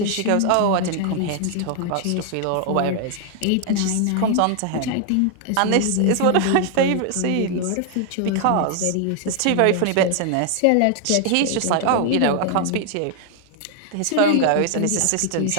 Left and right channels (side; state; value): both; different; correlation 0.00